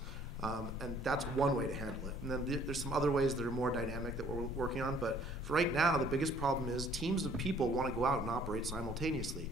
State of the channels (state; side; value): normal; both; correlation 0.58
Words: And that's one way to handle it. And then there's some other ways that are more dynamic that we're working on. But for right now, the biggest problem is teams of people want to go out and operate simultaneously.